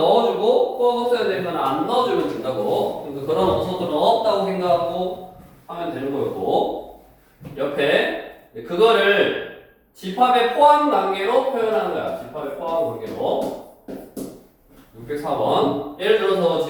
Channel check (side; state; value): both; identical; correlation 1.00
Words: 꼭 없어야 되는 거는 안 넣어주면 된다고. 그러니까 그런 원소들은 없다고 생각하고 하면 되는 거였고, 옆에 그거를 집합의 포함 관계로 표현하는 거야. 집합의 포함 관계로. 604번. 예를 들어서